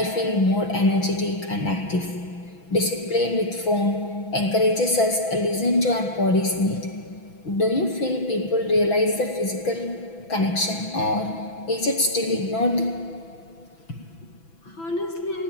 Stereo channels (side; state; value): right; late; 6.0 ms